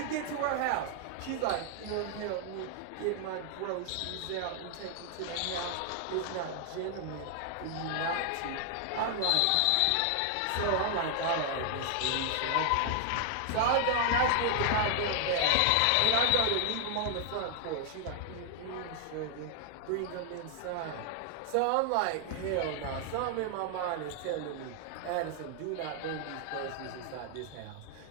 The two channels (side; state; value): both; different; correlation 0.00